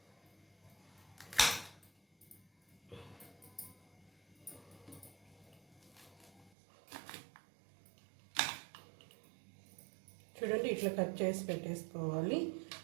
చూడండి, ఇట్లా కట్ చేసి పెట్టేసుకోవాలి.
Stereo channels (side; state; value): left; drops out; at 6.5 s